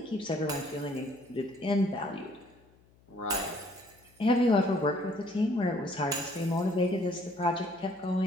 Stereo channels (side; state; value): left; noise; hum, 30 dB below the sound